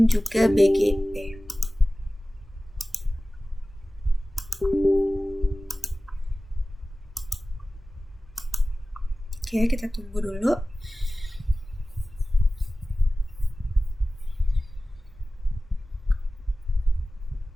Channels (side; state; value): both; normal; correlation 0.96